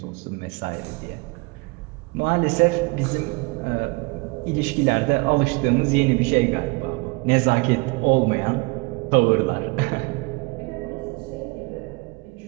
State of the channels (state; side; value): quieter; left; 28.2 dB